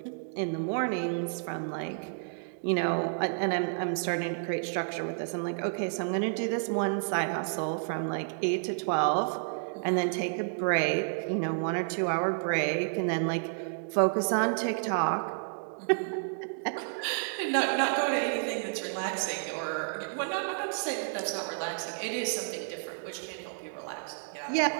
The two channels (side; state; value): left; silent; digital silence